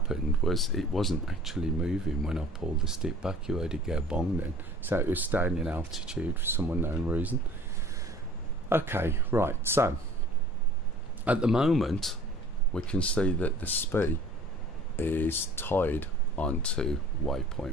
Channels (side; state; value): both; normal; correlation 0.49